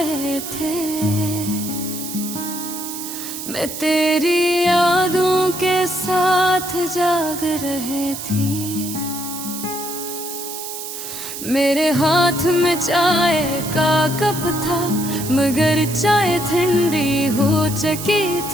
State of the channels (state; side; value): noise; right; hiss, 8 dB below the sound